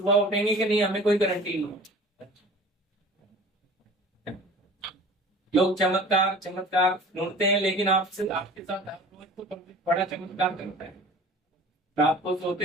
उठेंगे कि नहीं, हमें कोई गारंटी नहीं। लोग चमत्कार चमत्कार ढूंढते हैं, लेकिन आपसे आपके साथ हर रोज तो बड़ा चमत्कार करता है। रात को सोते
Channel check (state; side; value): normal; both; correlation 0.43